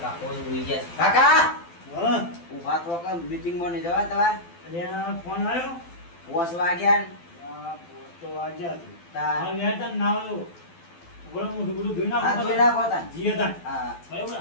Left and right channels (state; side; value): late; right; 12 ms